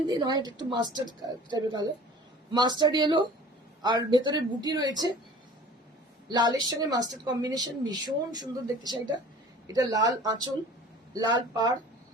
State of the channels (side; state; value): both; normal; correlation 0.45